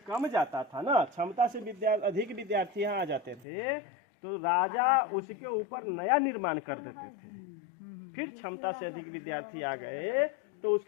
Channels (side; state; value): right; drops out; at 3.5 s